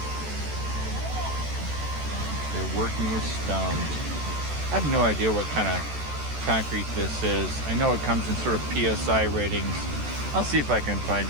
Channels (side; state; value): left; late; 14 ms